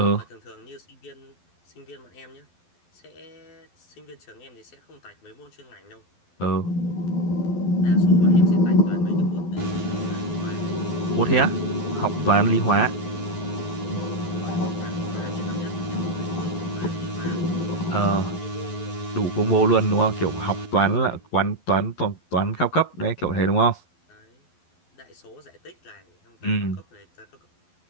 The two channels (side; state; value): right; late; 11 ms